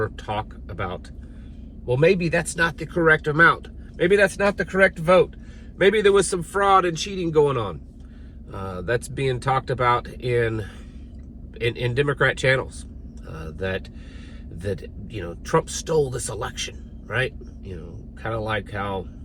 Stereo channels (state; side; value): identical; both; correlation 1.00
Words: talk about, well, maybe that's not the correct amount. Maybe that's not the correct vote. Maybe there was some fraud and cheating going on. That's being talked about in Democrat channels. That Trump stole this election, right? Kind of like how